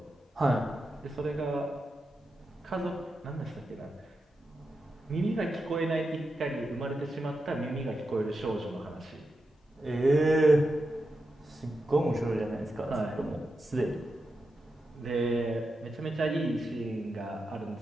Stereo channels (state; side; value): normal; both; correlation 0.88